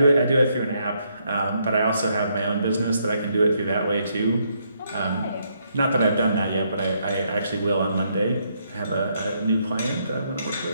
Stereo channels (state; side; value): inverted; both; correlation -0.74